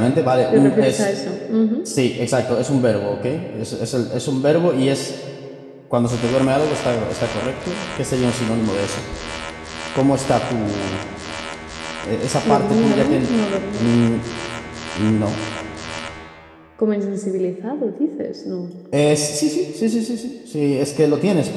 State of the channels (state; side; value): identical; both; correlation 1.00